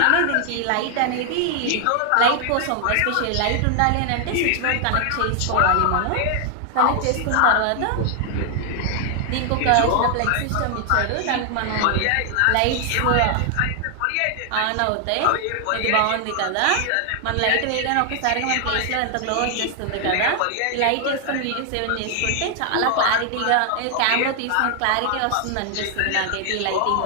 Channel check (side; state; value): both; different; correlation 0.00